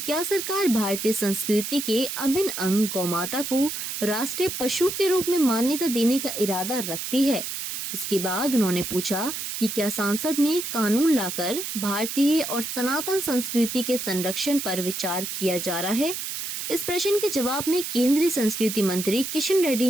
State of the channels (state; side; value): noise; right; hiss, 5 dB below the sound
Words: सरकार भारतीय संस्कृति के अभिन्न अंग गौमाता को राष्ट्रीय पशु के रूप में मान्यता देने का इरादा रखती है। इसके बाद उन्होंने पूछा कि क्या संसद में कानून लाकर भारतीय और सनातन संस्कृति के संरक्षण पर विचार किया जा रहा है। इस प्रश्न के जवाब में केंद्रीय संस्कृति मंत्री किशन